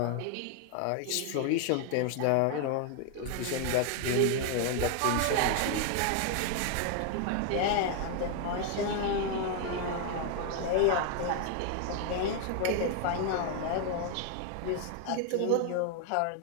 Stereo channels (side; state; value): both; different; correlation 0.00